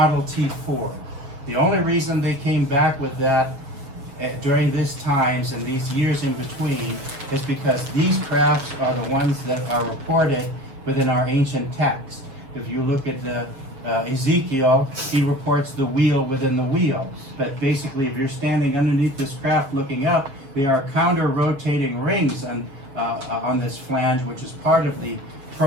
T4. The only reason they came back with that during these times and these years in between is because these crafts are the ones that are reported within our ancient text. If you look at the Ezekiel, he reports the wheel within the wheel. But basically, if you're standing underneath this craft looking up, they are counter-rotating rings on this flange, which is part of the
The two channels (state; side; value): late; left; 7.0 ms